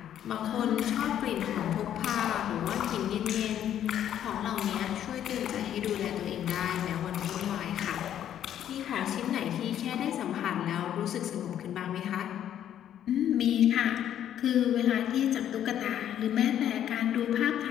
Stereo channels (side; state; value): right; quieter; 10.5 dB